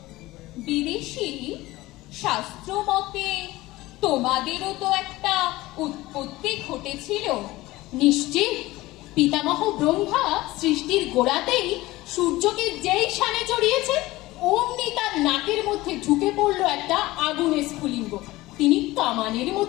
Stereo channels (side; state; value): right; quieter; 18.7 dB